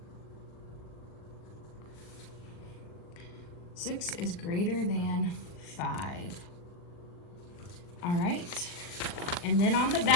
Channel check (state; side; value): late; right; 40 ms